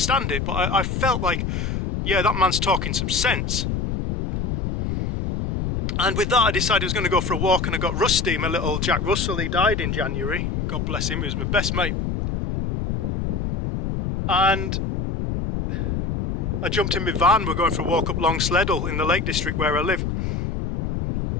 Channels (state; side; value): noise; left; rumble, 2 dB below the sound